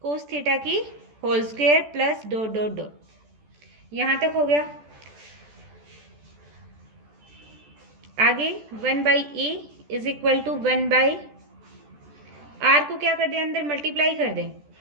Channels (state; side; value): late; left; 14 ms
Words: cos theta की whole square plus dot dot dot. यहाँ तक हो गया। आगे 1 by A is equal to 1 by are को क्या कर दें, अंदर मल्टीप्लाई कर दें।